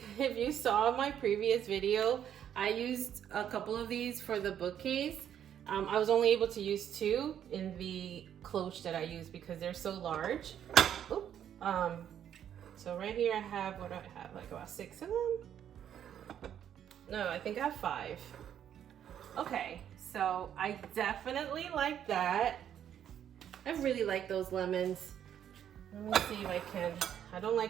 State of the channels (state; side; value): quieter; left; 9.7 dB